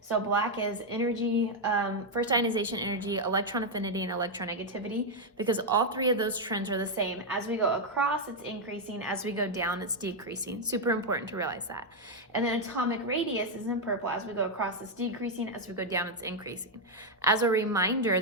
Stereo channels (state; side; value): normal; both; correlation 0.00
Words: So black is energy, first ionization energy, electron affinity, and electronegativity, because all three of those trends are the same. As we go across, it's increasing. As we go down, it's decreasing. Super important to realize that. And then atomic radius is in purple. As we go across, it's decreasing. As we go down, it's increasing. As a reminder,